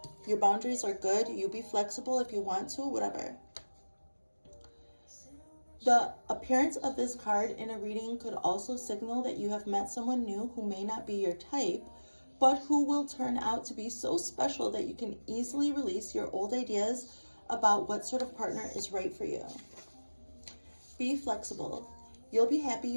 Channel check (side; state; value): both; inverted; correlation -1.00